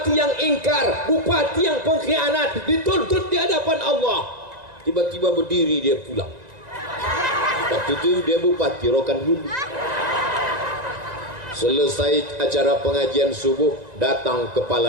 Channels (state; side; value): late; left; 1.9 ms